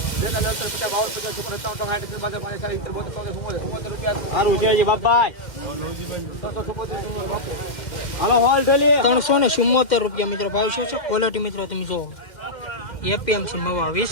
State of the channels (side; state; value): right; late; 2.1 ms